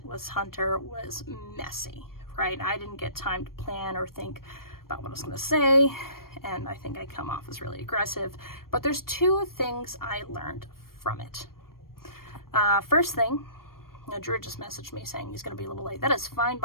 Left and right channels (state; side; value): late; right; 0.93 ms